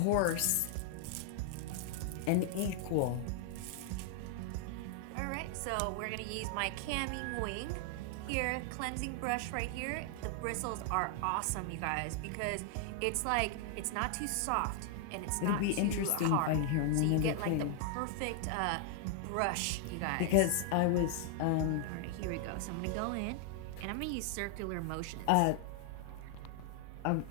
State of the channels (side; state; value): both; different; correlation 0.00